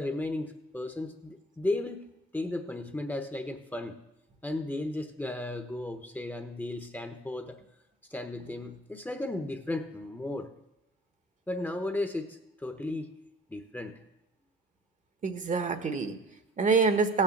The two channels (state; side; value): normal; both; correlation 0.52